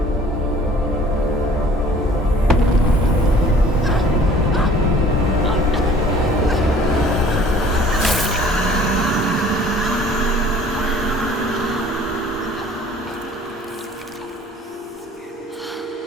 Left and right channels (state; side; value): normal; both; correlation 0.52